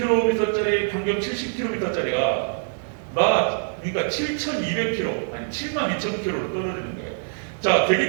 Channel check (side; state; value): left; silent; digital silence